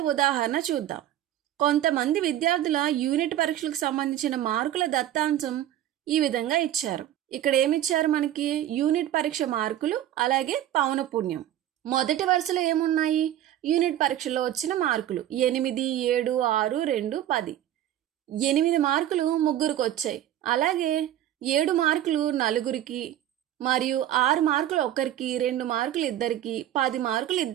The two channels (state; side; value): quieter; left; 12.1 dB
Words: ఉదాహరణ చూద్దాం. కొంతమంది విద్యార్థుల యూనిట్ పరీక్షలకు సంబంధించిన మార్కుల దత్తాంశం ఈ విధంగా ఇచ్చారు. ఇక్కడ ఏమిచ్చారు? మనకి యూనిట్ పరీక్ష మార్కులు అలాగే పౌనపున్యం. మొదటి వరుసలో ఏమున్నాయి? యూనిట్ పరీక్షలో వచ్చిన మార్కులు 8, 7, 6, 2, 10. 8 మార్కులు ముగ్గురికి వచ్చాయి. అలాగే 7 మార్కులు నలుగురికి మరియు 6 మార్కులు ఒకరికి, 2 మార్కులు ఇద్దరికి, 10 మార్కులు